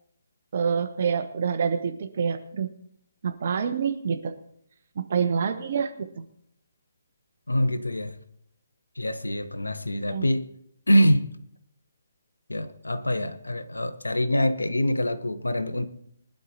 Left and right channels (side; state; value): both; inverted; correlation -0.90